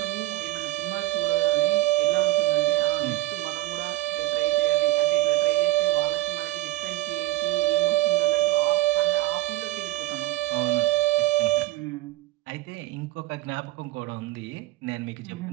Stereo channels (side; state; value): left; quieter; 17.7 dB